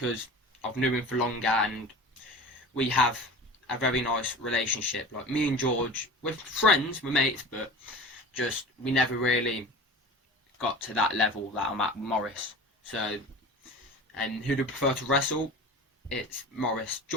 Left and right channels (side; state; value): both; normal; correlation 0.36